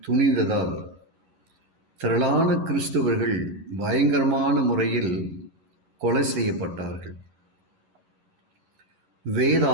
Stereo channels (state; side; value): late; left; 11 ms